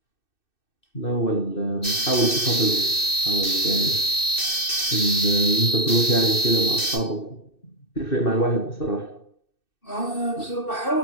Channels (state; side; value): late; right; 2.6 ms